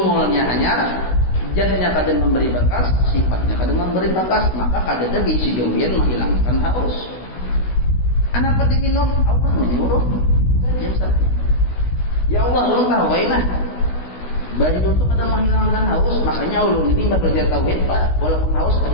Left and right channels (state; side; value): late; right; 16 ms